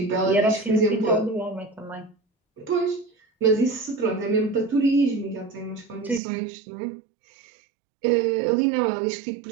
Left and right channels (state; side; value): drops out; left; at 6.2 s